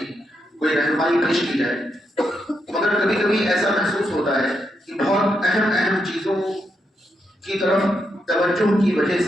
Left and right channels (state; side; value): normal; both; correlation 0.82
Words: کوئی رہنمائی پیش کی جائے، مگر کبھی کبھی ایسا محسوس ہوتا ہے کہ بہت اہم چیزوں کی طرف توجہ کی وجہ